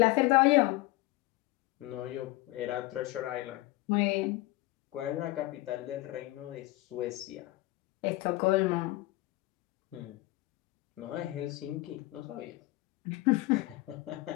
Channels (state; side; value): quieter; right; 19.2 dB